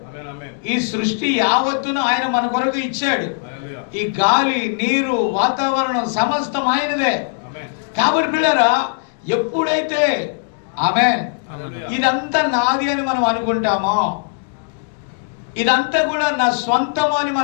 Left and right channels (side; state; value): right; silent; digital silence